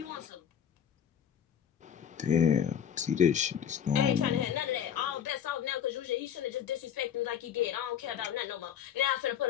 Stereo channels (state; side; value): quieter; right; 8.8 dB